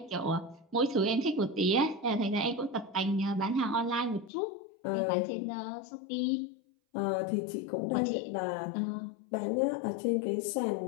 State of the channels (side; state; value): right; drops out; at 4.3 s